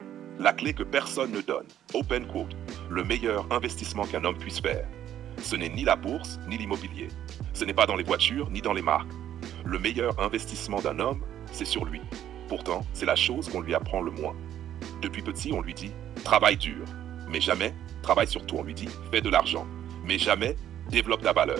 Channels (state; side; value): quieter; left; 11.1 dB